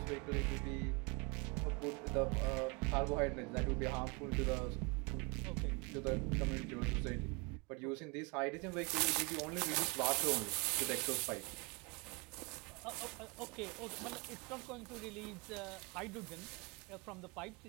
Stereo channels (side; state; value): left; quieter; 29.0 dB